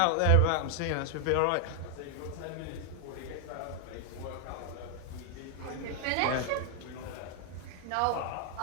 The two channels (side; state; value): both; different; correlation 0.00